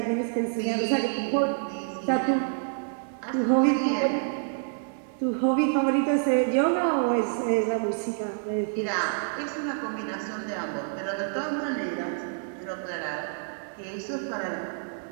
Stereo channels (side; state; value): left; silent; 58 dB below the other